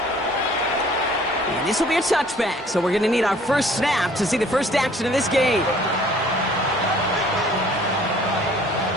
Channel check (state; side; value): normal; both; correlation 0.55